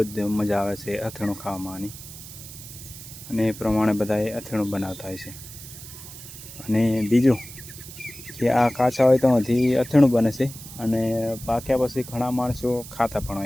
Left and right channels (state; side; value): noise; right; hiss, 14 dB below the sound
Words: જ મજા આવે છે અથેણું ખાવામાં. અને એ પ્રમાણે બધાએ અથેણું બનાવતા હોય છે. અને બીજું કે આ કાચા હોય તો હજી અથેણું બને છે, અને પાક્યા પછી ઘણા માણસો ખાતા પણ